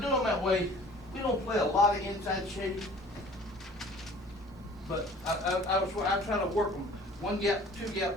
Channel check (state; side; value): normal; both; correlation 0.49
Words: them that way. We don't play a lot of inside shade, but I try to work them 1 gap, 2